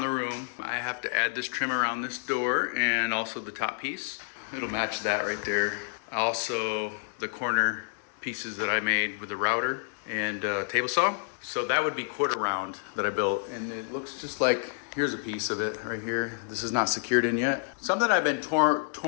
the room. I have to add this trim around this door and also the top piece. It'll match that right there. Also the corner pieces that I made with the router and table saw. So that would be quarter round that I built, and it looks just like, here's a piece of it right here. This is not secured in yet. Something I've been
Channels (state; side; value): silent; right; digital silence